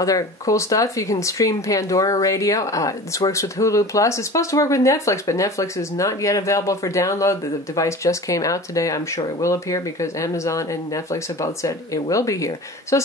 cool stuff. You can stream Pandora Radio. This works with Hulu Plus. It's supposed to work with Netflix, but Netflix is not yet available for download. The device just came out today. I'm sure it will appear because Amazon and Netflix have both said it will be here. So it's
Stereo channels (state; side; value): normal; both; correlation 0.37